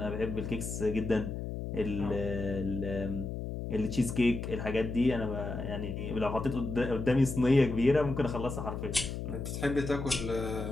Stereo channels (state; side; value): noise; left; hum, 5 dB below the sound